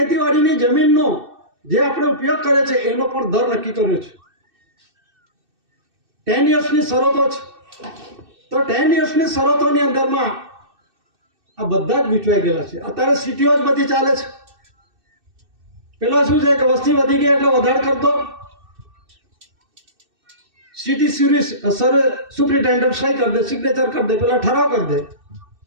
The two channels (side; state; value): left; late; 2.6 ms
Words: જમીનનો જે આપણે ઉપયોગ કરે છે એનો પણ દર નક્કી કર્યો છે. 10 yearsની શરતો છે. તો 10 yearsની શરતોની અંદરમાં આ બધા જ વિચવાઈ ગયેલા છે. અત્યારે સિટીઓ જ બધી ચાલે છે. પેલા શું છે કે વસ્તી વધી ગઈ એટલે વધારે કરતો સિટી સુપ્રિન્ટેન્ડન્ટ સહી કરી દે, સિગ્નેચર કરી દે, પેલા ઠરાવ કરી દે